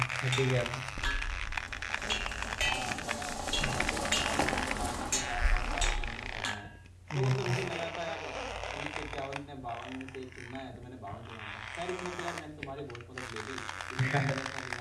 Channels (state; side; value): identical; both; correlation 1.00